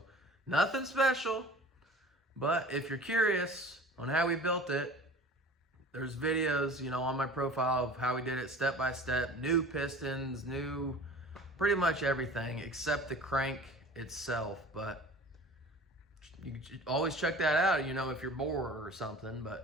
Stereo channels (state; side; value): normal; both; correlation 0.42